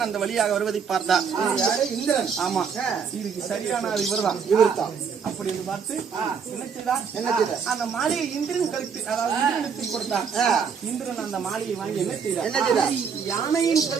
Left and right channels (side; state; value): left; quieter; 6.4 dB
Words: அந்த வழியாக வருவதை பார்த்தார். இந்திரன். ஆமா, இதுக்கு சரியான இவர்தான். அப்படி என்று பார்த்து என்ன செய்தார்? அந்த மாலையை இந்திரன் கழுத்து அதாவது இந்திரனுக்கு கொடுத்தார். இந்திரன் அந்த மாலையை வாங்கி என்ன செய்தார்? யானையின்